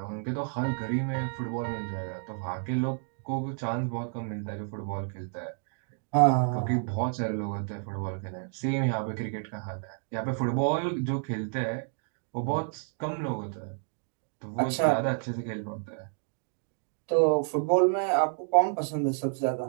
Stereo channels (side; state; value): left; silent; 58 dB below the other